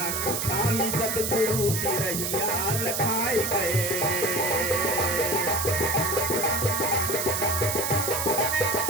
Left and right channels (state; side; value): noise; right; hiss, 1 dB below the sound